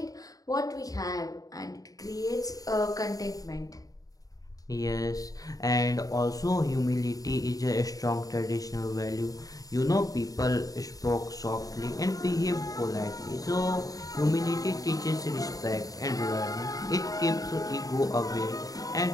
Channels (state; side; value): late; right; 0.18 ms